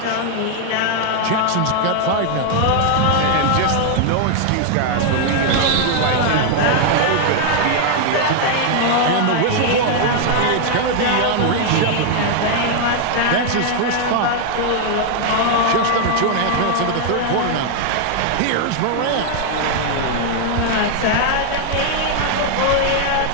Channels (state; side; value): different; both; correlation 0.00